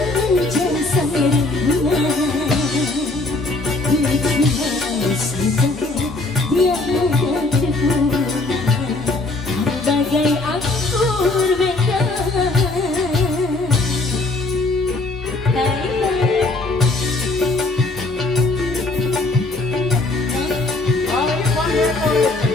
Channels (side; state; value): right; quieter; 3.1 dB